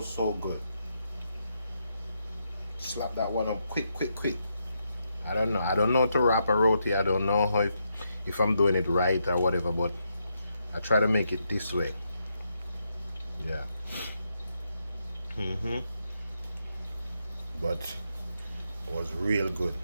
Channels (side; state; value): both; inverted; correlation -0.81